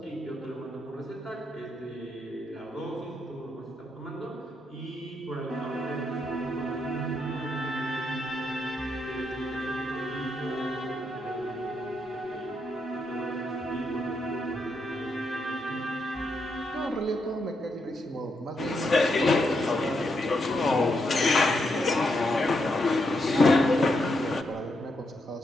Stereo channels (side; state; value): both; normal; correlation 0.80